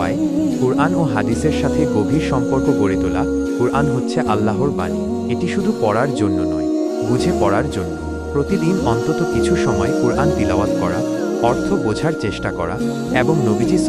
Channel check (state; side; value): identical; both; correlation 1.00